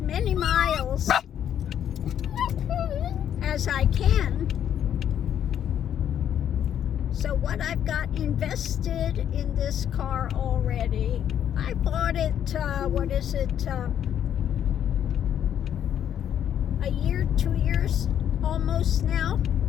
many miles as I can. So what I've got invested in this car already, I bought it, a year, 2 years almost now.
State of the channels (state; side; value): quieter; right; 9.7 dB